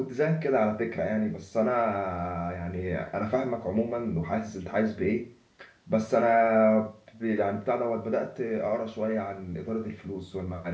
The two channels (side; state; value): both; identical; correlation 1.00